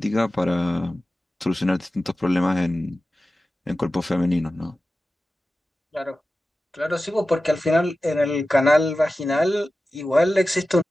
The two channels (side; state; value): both; normal; correlation 0.94